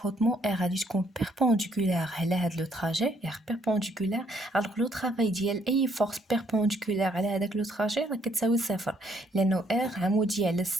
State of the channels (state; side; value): normal; both; correlation 0.68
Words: ار غادي تكون بيربونديكولار على هاد لو تراجي ار بيربونديكولار. الوغ لو طرافاي ديال اي فورس بيربونديكولار على هذاك لو تراجي راه كتساوي صفر لانه ار عمودي على